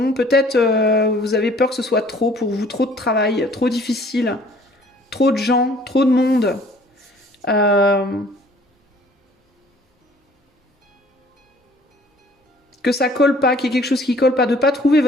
Peut-être vous avez peur que ce soit trop pour vous, trop de travail, trop difficile, trop de gens, trop de monde. Que ça colle pas, qu'il y ait quelque chose qui colle pas, de pas trouver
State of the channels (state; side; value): normal; both; correlation 0.55